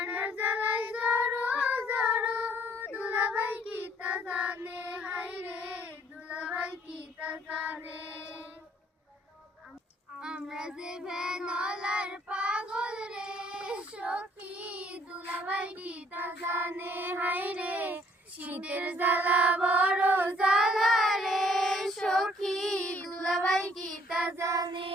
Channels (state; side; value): normal; both; correlation 0.62